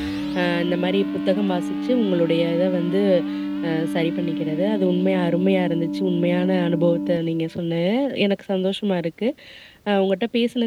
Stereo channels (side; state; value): both; identical; correlation 1.00